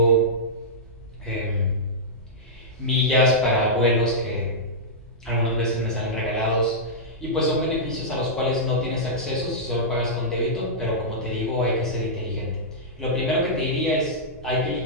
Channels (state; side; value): normal; both; correlation -0.12